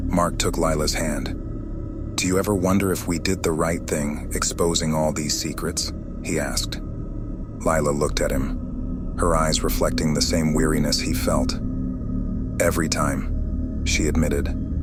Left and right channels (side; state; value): both; identical; correlation 1.00